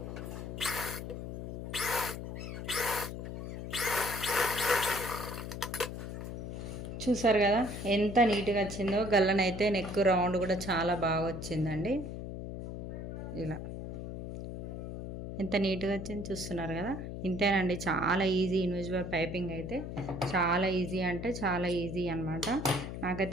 చూసారు కదా ఎంత నీట్గా వచ్చిందో. గల్లనైతే నెక్ రౌండ్ కూడా చాలా బాగా వచ్చిందండి. ఇలా ఎంత నీట్గా వచ్చింది చూస్తున్నారు కదా. ఇంతేనండి, చాలా ఈజీ ఇన్విజిబుల్ పైపింగ్ అయితే. చాలా ఈజీ అంటే చాలా ఈజీ అనమాట.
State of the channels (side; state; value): left; noise; hum, 7 dB below the sound